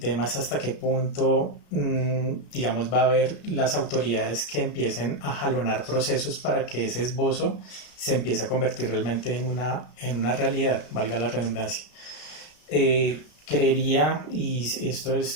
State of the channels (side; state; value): right; late; 33 ms